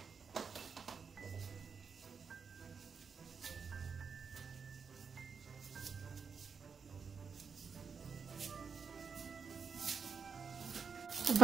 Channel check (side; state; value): left; quieter; 5.8 dB